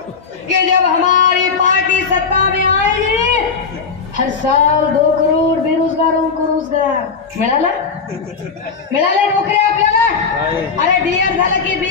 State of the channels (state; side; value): quieter; right; 5.3 dB